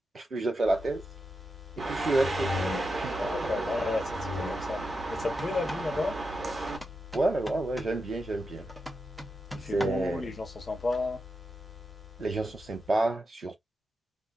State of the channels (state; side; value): normal; both; correlation 0.88